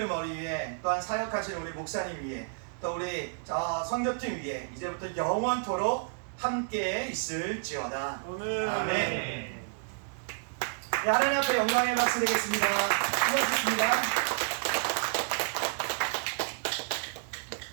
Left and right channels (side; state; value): left; silent; digital silence